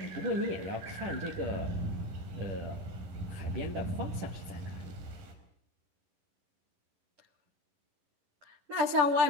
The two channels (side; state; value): left; late; 10 ms